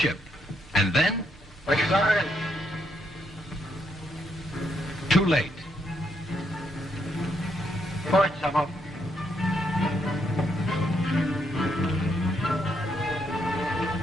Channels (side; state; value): both; normal; correlation 0.77